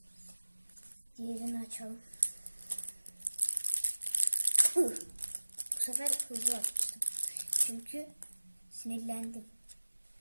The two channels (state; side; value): inverted; both; correlation -1.00